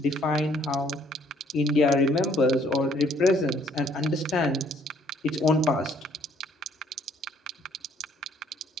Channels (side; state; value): both; normal; correlation 0.63